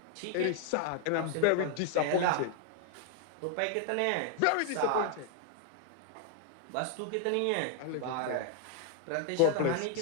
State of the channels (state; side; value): different; both; correlation 0.00